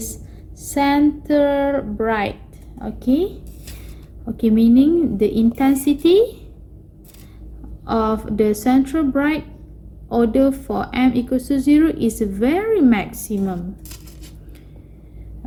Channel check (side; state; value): both; identical; correlation 1.00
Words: center bright. Okay, meaning the intensity of the central bright order for m equals to 0 is very maximum.